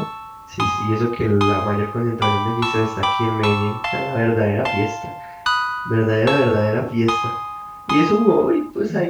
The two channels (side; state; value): both; identical; correlation 1.00